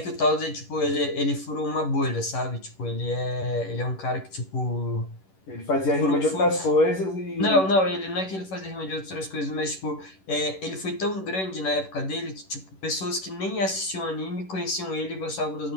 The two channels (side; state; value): right; late; 11 ms